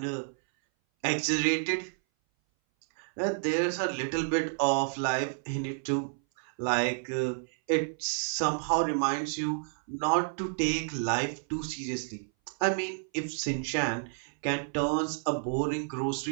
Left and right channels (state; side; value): silent; left; 58 dB below the other